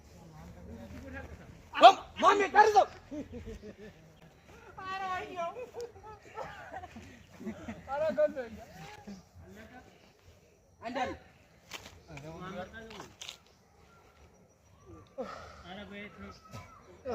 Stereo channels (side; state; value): both; identical; correlation 1.00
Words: مامي ترزق عندنا انا بيت